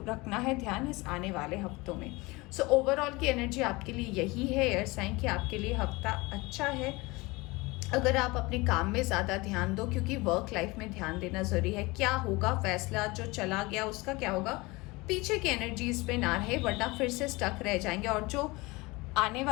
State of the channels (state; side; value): quieter; right; 23.4 dB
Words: रखना है ध्यान इस आने वाले हफ्तों में। सो ओवरऑल की एनर्जी आपके लिए यही है एयर साइन कि आपके लिए हफ्ता अच्छा है। अगर आप अपने काम में ज़्यादा ध्यान दो, क्योंकि वर्क लाइफ में ध्यान देना ज़रूरी है। क्या होगा, फैसला जो चला गया उसका क्या होगा, पीछे की एनर्जीज पे ना रहे, वरना फिर से स्टक रह जाएंगे। और जो आने